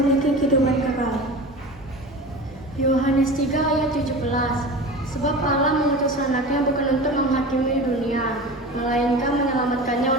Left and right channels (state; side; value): normal; both; correlation 0.32